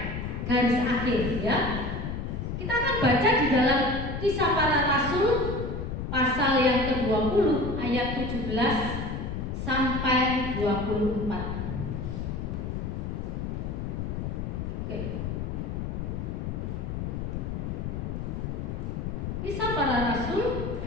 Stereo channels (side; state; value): left; noise; rumble, 4 dB below the sound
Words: garis akhir ya. Kita akan baca di dalam Kisah Para Rasul pasal yang ke-20 ayat 17 sampai 24. Oke. Kisah Para Rasul